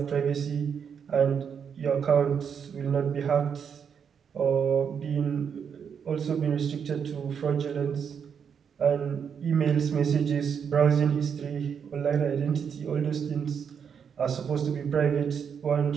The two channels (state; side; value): quieter; left; 7.2 dB